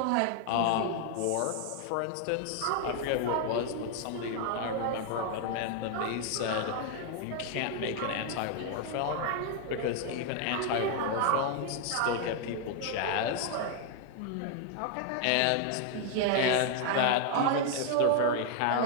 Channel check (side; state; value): both; different; correlation 0.00